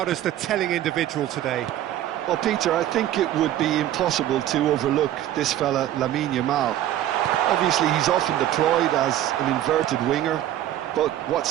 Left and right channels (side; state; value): left; quieter; 12.6 dB